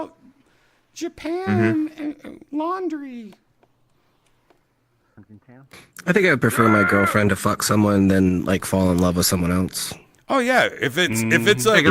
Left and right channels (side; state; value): both; identical; correlation 1.00